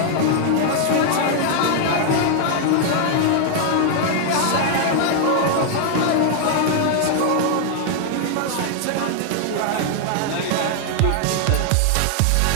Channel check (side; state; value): both; different; correlation -0.01